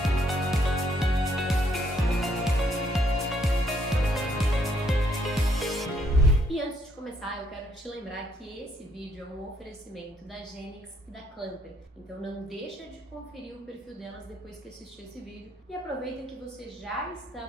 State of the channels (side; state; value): both; normal; correlation 0.70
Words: E antes de começar, eu quero te lembrar que esse vídeo é um oferecimento da Genix e da Clamper. Então não deixa de conferir o perfil delas depois que assistir esse vídeo e aproveita que você já está